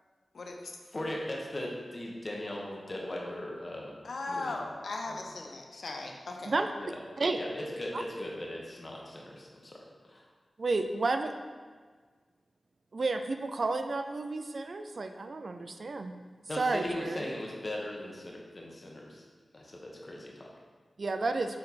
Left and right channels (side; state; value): both; normal; correlation 0.94